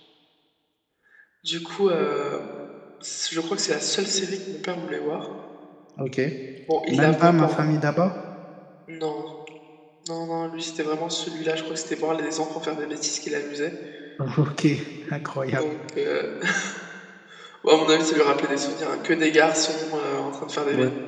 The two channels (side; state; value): both; identical; correlation 1.00